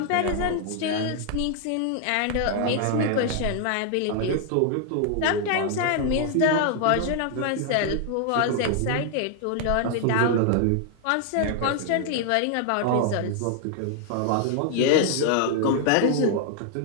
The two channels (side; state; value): both; different; correlation 0.00